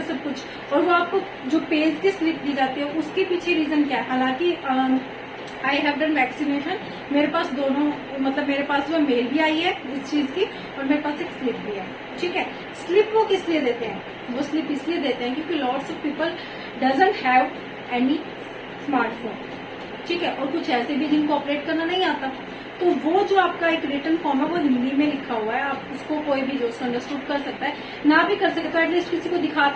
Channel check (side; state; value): both; identical; correlation 1.00